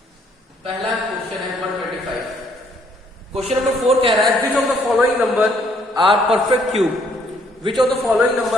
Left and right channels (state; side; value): normal; both; correlation 0.66